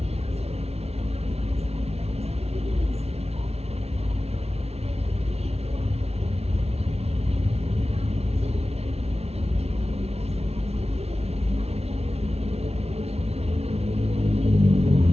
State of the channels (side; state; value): left; late; 0.30 ms